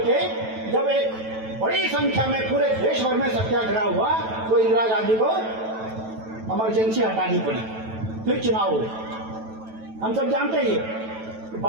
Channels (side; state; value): left; late; 9.1 ms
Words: के जब एक बड़ी संख्या में पूरे देश भर में सत्याग्रह हुआ तो इंदिरा गांधी को इमरजेंसी हटानी पड़ी, फिर चुनाव हुए। हम सब जानते हैं।